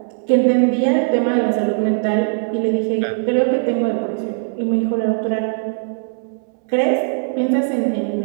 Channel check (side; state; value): left; silent; 66 dB below the other